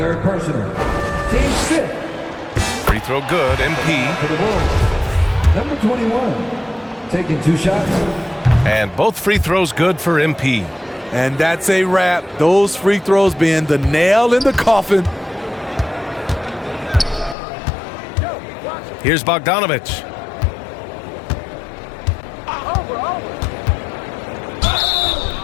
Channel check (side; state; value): right; drops out; at 17.4 s